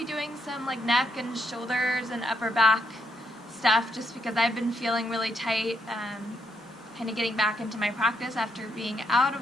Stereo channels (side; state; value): both; normal; correlation 0.77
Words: doing some like neck and shoulders and upper back stuff just because I've been feeling really tight, kind of getting back into my practice after being out